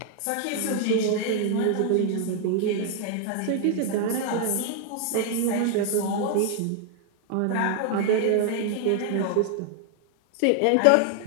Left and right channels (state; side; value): different; both; correlation 0.00